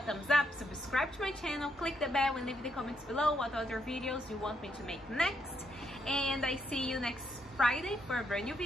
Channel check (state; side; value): normal; both; correlation 0.77